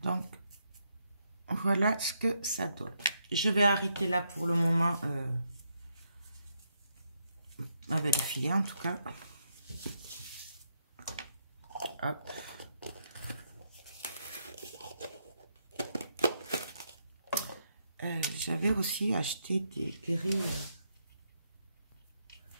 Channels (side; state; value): both; inverted; correlation -0.78